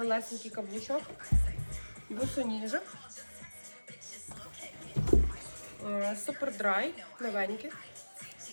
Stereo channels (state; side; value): inverted; both; correlation -1.00